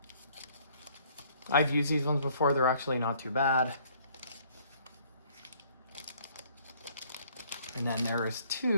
I've used these ones before. They're actually not too bad. And then there is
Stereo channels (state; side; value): inverted; both; correlation -0.60